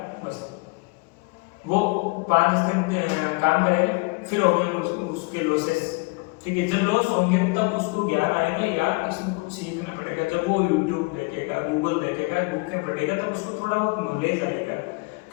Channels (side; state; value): right; quieter; 29.1 dB